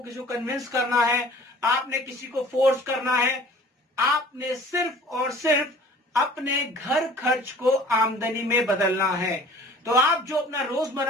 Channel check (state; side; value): normal; both; correlation 0.48